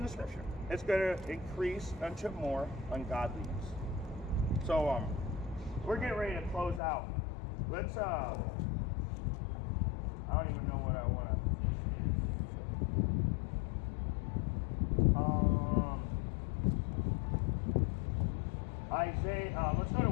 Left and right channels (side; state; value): right; drops out; at 6.8 s